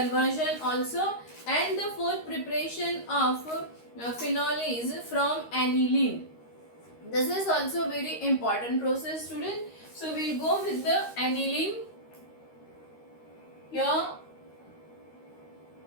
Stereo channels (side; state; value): right; late; 13 ms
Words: also. And the 4th preparation of phenol is from aniline. This is also very important process, student. So we'll go with the aniline. Here